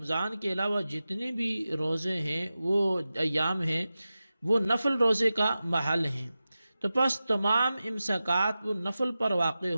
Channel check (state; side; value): inverted; both; correlation -0.94